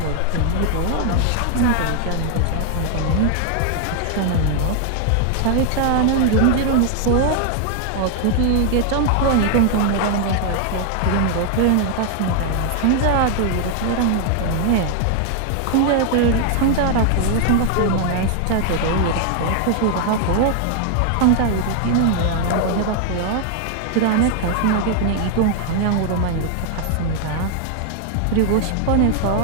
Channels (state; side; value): different; both; correlation 0.00